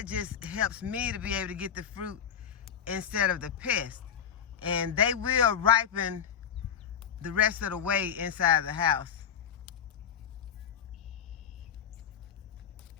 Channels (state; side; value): quieter; right; 8.2 dB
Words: just helps me to be able to get the fruit instead of the pest. And they will ripen the rest of the way inside the house.